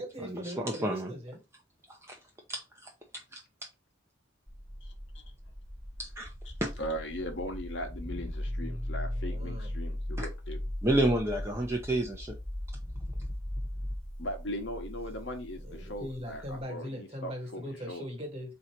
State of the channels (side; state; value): both; normal; correlation 0.65